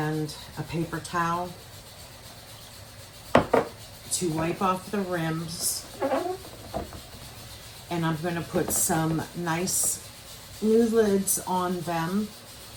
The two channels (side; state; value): both; identical; correlation 1.00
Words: a paper towel to wipe off the rims. And I'm going to put some nice new lids on them